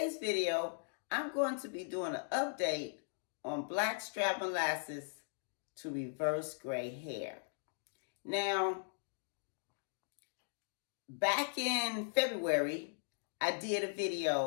video, I'm going to be doing an update on Blackstrap Molasses to reverse gray hair. Now, back in February, I did a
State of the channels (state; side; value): silent; right; digital silence